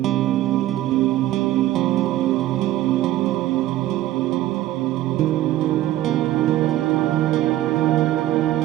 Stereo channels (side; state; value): left; quieter; 14.4 dB